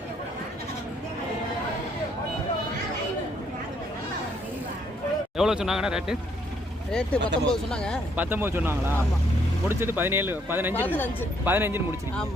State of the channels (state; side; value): normal; both; correlation 0.69